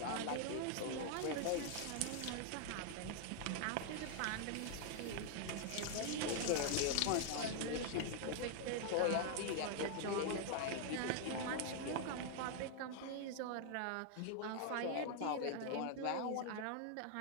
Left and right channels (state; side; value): different; both; correlation 0.00